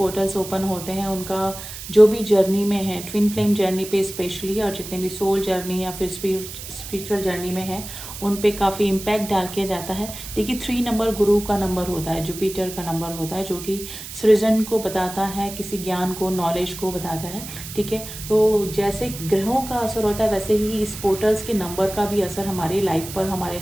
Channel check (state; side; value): noise; right; hiss, 11 dB below the sound